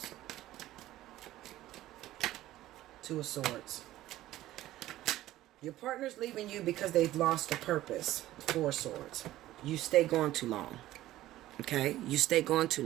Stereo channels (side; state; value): left; quieter; 15.0 dB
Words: Two of Swords. Your partner's leaving you because they've lost a purpose. Four of Swords. You stay gone too long. Okay? You stay gone too